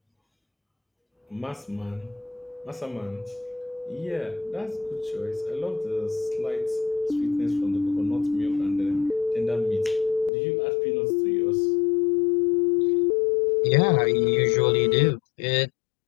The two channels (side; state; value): right; drops out; at 10.3 s